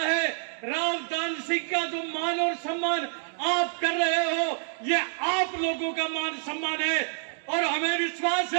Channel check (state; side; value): silent; left; digital silence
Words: रावदान सिंह का जो मान और सम्मान आप कर रहे हो, ये आप लोगों का मान सम्मान है। और हमें विश्वास